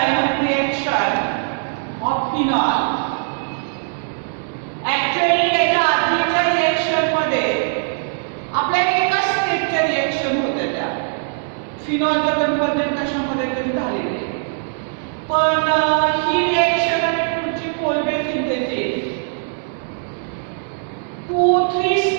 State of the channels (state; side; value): silent; left; digital silence